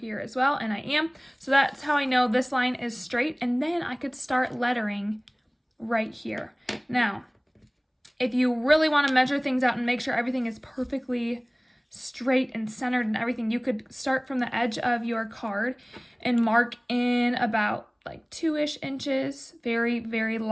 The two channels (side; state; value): both; identical; correlation 1.00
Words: as well, and I am. So that's how I know this line is straight, and then I could start lettering right here. Now, if you really want to measure things out and make sure everything is perfectly straight and centered and everything, you could start from the edge of your card and mark in about like 2-ish inches very, very